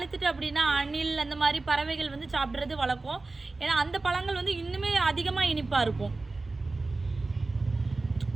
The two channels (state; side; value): quieter; left; 3.5 dB